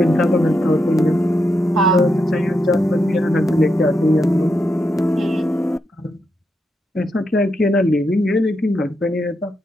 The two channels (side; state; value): both; normal; correlation 0.83